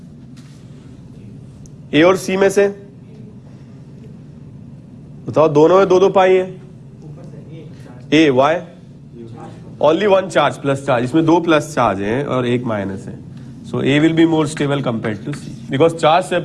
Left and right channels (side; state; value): both; identical; correlation 1.00